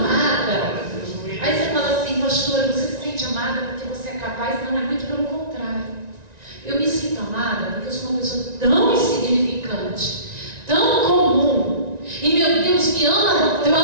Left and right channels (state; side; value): late; left; 1.9 ms